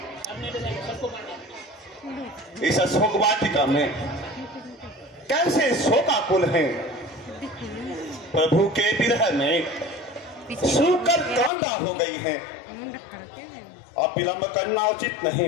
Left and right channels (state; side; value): drops out; right; at 11.5 s